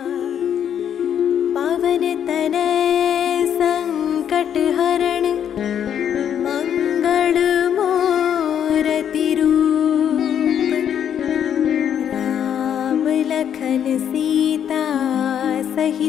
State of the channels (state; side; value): quieter; right; 9.1 dB